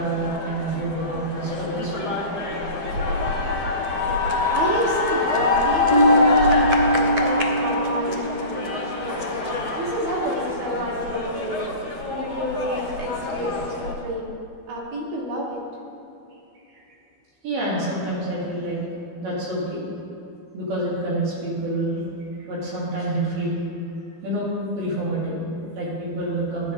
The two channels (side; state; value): left; late; 12 ms